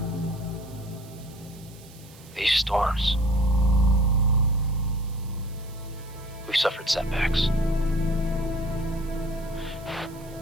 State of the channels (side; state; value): right; noise; hiss, 23 dB below the sound